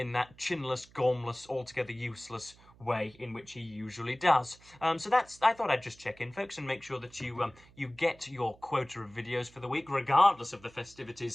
that chinless, gormless, altogether useless way in which he usually does. So I thought I'd just check in, folks, and make sure that you get your quota of videos for the week, regardless of the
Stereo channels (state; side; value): noise; right; hum, 25 dB below the sound